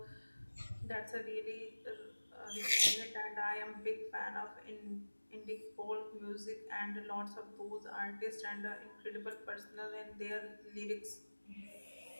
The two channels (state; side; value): inverted; both; correlation -1.00